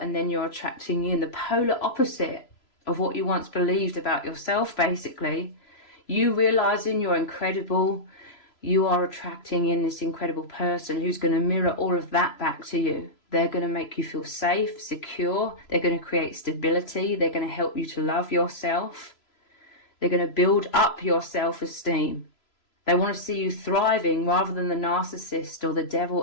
then you're attracting in the polar opposite of what you once believed about yourself, basically. You realizing you're incredible, you are attracting in this incredible person who's going to mirror all of that back to you. They're going to make you feel safe, secure. They're going to create stability. They're going to help you to love yourself. They're going to build up your self-esteem. They want to see you thriving rather than the narcissist or the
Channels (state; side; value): late; right; 3.0 ms